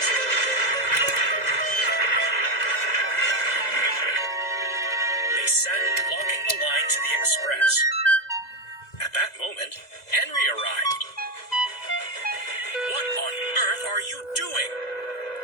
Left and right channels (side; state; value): right; late; 2.0 ms